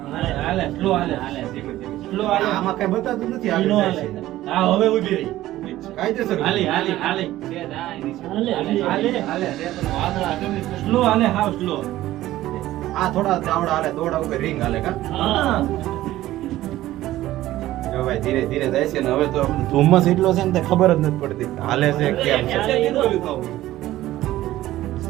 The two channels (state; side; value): quieter; left; 15.1 dB